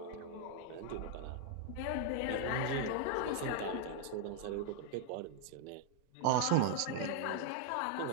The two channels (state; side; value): different; both; correlation 0.00